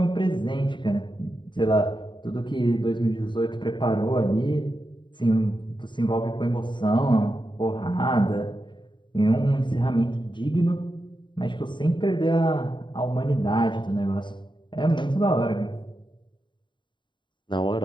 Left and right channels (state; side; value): late; right; 0.23 ms